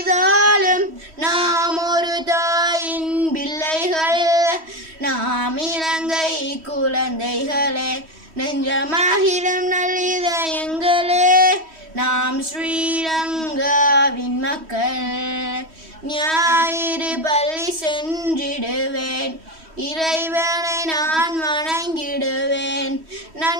நாம் ஒரு தாயின் பிள்ளைகள். நாம் இலங்கை குழந்தைகளே, நெஞ்சமாகிலும் நல்லிதயங்களே. நாம் ஸ்ரீலங்காவின் மக்கள். ஞாயிறு பள்ளி சென்றிடுவேன், இறைவனை நான் வணங்கிடுவேன்.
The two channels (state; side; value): late; left; 3.1 ms